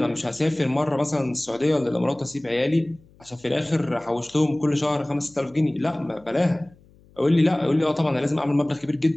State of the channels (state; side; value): noise; left; hum, 28 dB below the sound